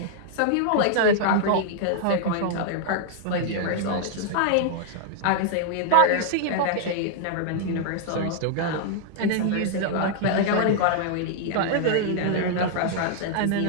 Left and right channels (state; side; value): different; both; correlation -0.01